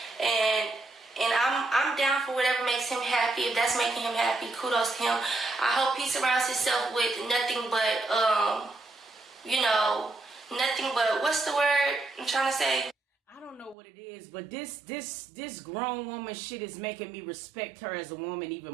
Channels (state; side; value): drops out; left; at 13.8 s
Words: and I'm down for whatever makes him happy. If that's making him happy, kudos to him. I hope he surrounds himself with nothing but nothing but, what's the word I'm trying to say? I don't know what it is, but this grown woman shit is making me respect her as a woman even